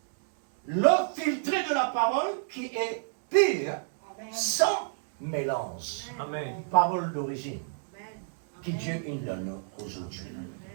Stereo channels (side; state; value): left; silent; 58 dB below the other